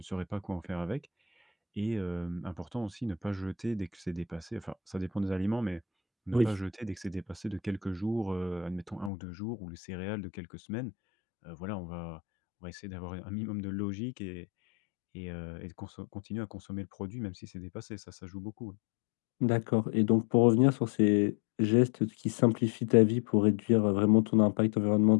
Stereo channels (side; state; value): right; drops out; at 9.1 s